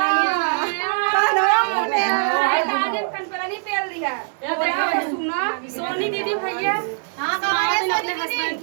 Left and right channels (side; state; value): left; silent; 59 dB below the other